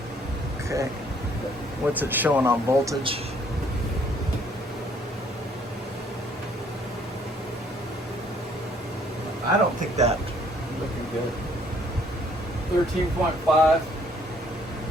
Okay. What's it showing on voltage? I don't think that. Looking good. 13.5.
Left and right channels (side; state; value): both; normal; correlation 0.62